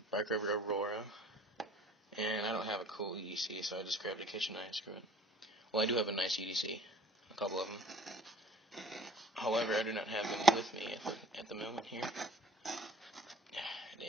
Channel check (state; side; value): normal; both; correlation 0.50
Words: Bark River Aurora, and I don't have a cool EDC, so I just grabbed a kitchen knife, screw it. Well, I do have a nice EDC, a couple of them. However, I do not have them with me at the moment here.